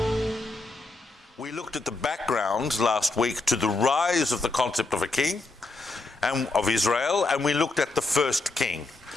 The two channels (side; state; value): right; quieter; 3.2 dB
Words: We looked at the background last week to the rise of the concept of a king and of Israel, and we looked at the first king.